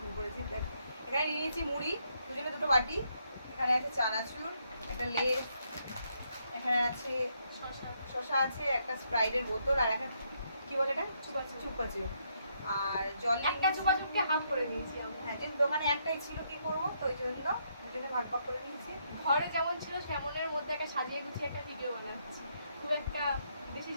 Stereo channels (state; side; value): inverted; both; correlation -0.75